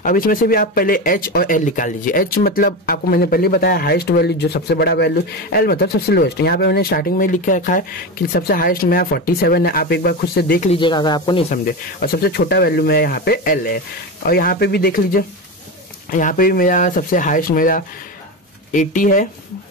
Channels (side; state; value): both; normal; correlation 0.20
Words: अब इसमें से भी आप पहले h और l निकाल लीजिए। h मतलब आपको मैंने पहले बताया हाईएस्ट वैल्यू, जो सबसे बड़ा वैल्यू, l मतलब सबसे लोएस्ट। यहाँ पे मैंने स्टार्टिंग में लिख के रखा है कि सबसे हाईएस्ट मेरा 47 है, आप एक बार खुद से देख लीजिएगा अगर आपको नहीं समझे। और सबसे छोटा वैल्यू मेरा यहाँ पे l है, और यहाँ पे भी देख लीजिए, यहाँ पे भी मेरा सबसे हाईएस्ट मेरा 80 है